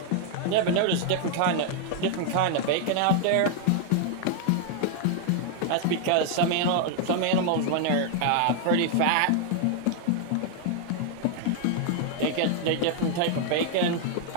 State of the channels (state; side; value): different; both; correlation 0.00